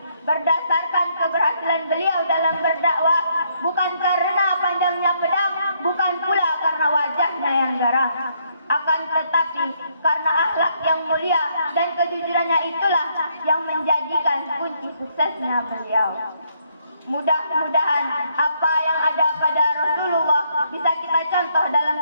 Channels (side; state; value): both; inverted; correlation -0.72